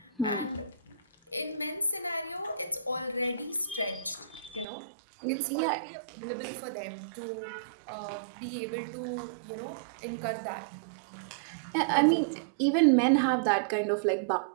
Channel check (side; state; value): left; drops out; at 4.7 s